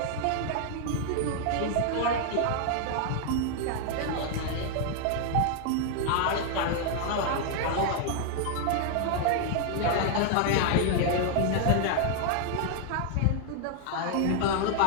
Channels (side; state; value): both; different; correlation 0.00